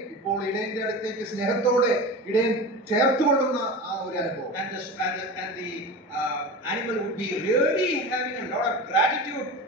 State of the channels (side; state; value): both; normal; correlation 0.29